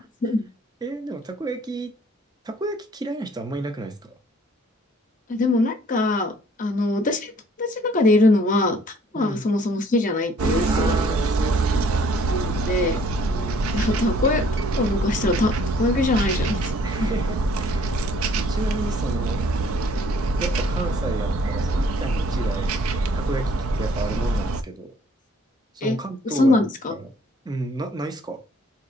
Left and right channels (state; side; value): normal; both; correlation 0.59